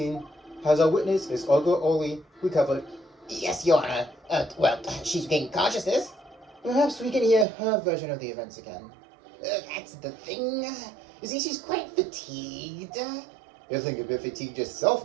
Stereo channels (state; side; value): drops out; left; at 7.5 s